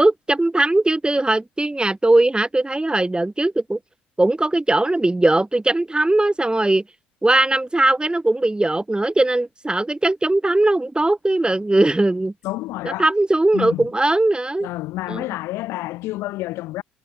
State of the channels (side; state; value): both; normal; correlation 0.94